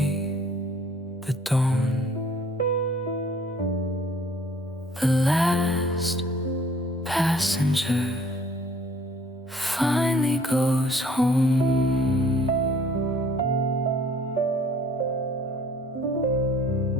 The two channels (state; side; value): normal; both; correlation 0.56